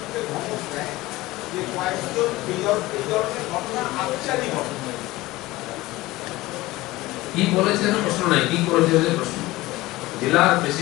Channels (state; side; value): quieter; right; 18.8 dB